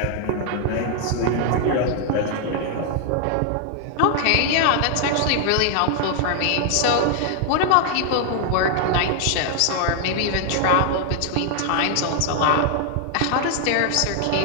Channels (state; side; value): different; both; correlation 0.00